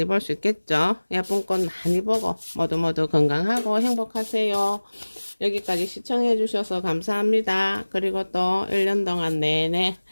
볼 수 있겠죠. 예쁜 꽃 많이 보고 모두 건강하고 행복하세요. 여기까지 시청해 주셔서 감사합니다. 그리고 또 1년 동안 내내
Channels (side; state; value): both; inverted; correlation -1.00